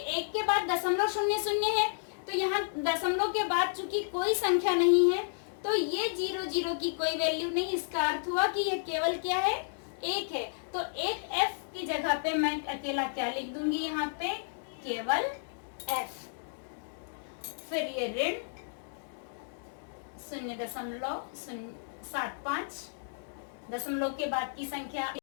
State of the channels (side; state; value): right; silent; digital silence